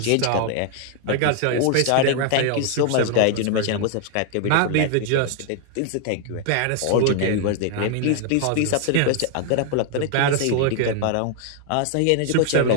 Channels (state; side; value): different; both; correlation 0.00